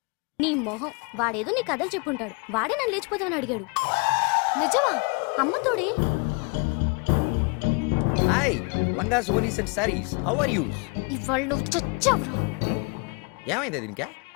నీ మొహం వాడేదో నీ కథలు చెప్పుంటాడు వాడే నన్ను లేచిపోతామని అడిగాడు నిజమా అమ్మ తోడే hi langas vonis and saris how are you ఇవాళ నువ్వు చచ్చావురా ఏమైంది దీనికా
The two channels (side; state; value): right; quieter; 32.6 dB